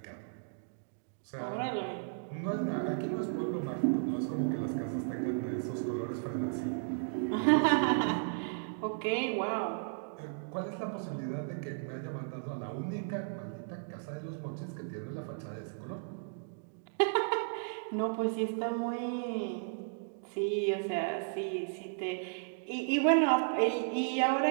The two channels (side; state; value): left; silent; digital silence